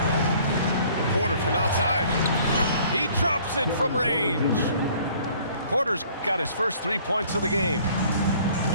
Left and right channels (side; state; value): both; inverted; correlation -0.56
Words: Porter from outside. He drops it from range. Porter's got his first 3 points of the game.